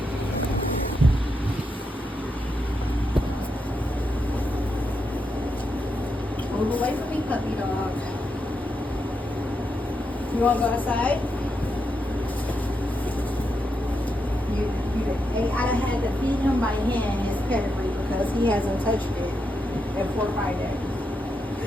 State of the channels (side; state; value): both; normal; correlation 0.84